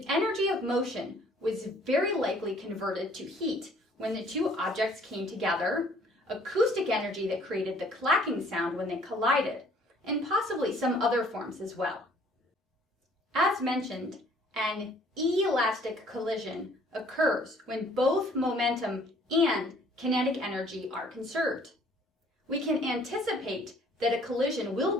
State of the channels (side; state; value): both; normal; correlation 0.58